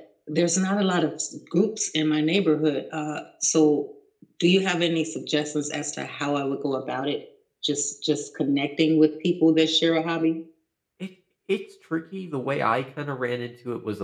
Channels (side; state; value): both; identical; correlation 1.00